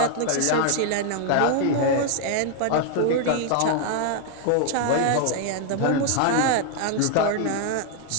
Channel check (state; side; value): different; both; correlation 0.00